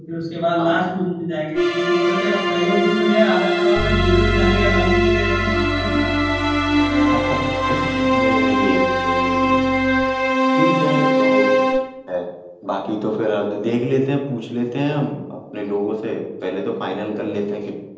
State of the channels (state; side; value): identical; both; correlation 1.00